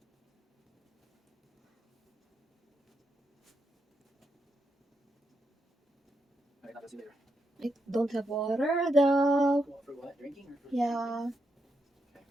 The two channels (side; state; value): both; normal; correlation 0.82